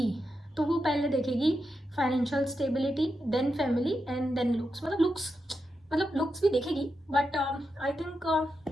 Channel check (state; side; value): normal; both; correlation 0.87